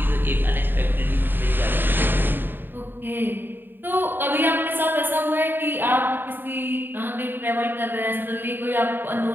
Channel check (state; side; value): late; left; 0.096 ms